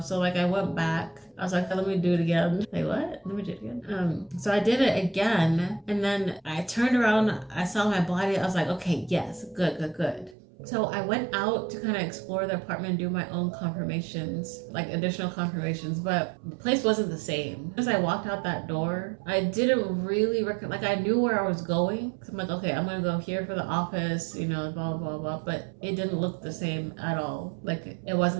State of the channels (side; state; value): left; drops out; at 10.4 s